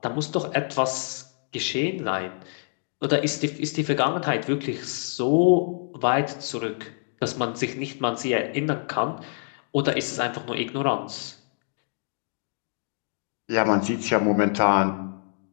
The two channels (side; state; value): right; silent; digital silence